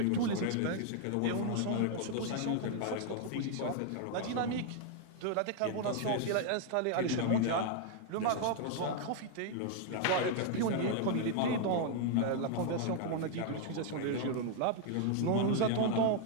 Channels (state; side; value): different; both; correlation 0.00